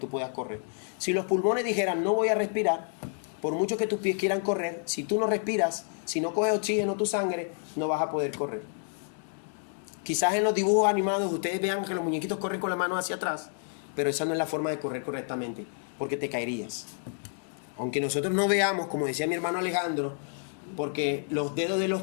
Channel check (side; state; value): right; silent; 58 dB below the other